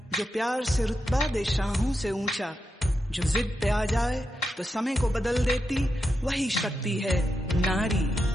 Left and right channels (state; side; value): normal; both; correlation 0.87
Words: जो प्यार से रुतबा दे शाहों से ऊंचा, जो जिद पे आ जाए तो समय को बदल देती, वही शक्ति है नारी।